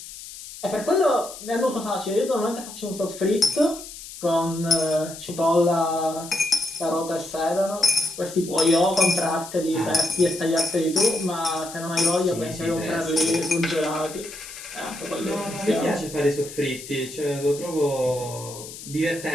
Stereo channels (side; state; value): left; noise; hiss, 13 dB below the sound